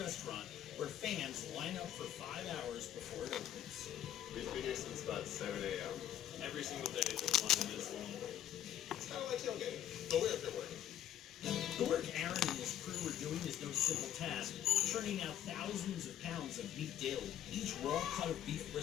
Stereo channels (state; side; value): quieter; right; 11.2 dB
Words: where fans line up for 5 hours before it opens. We've been here since about 7 a.m. Every single day this line is long. It's kind of like tailgating, but we're up here working. The work Aaron and his crew are doing is no simple task, churning out thousands of pounds of meat daily. Each raw cut of beef